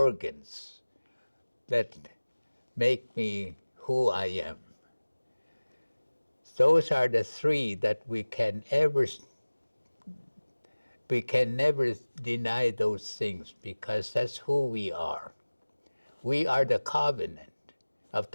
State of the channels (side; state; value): both; inverted; correlation -1.00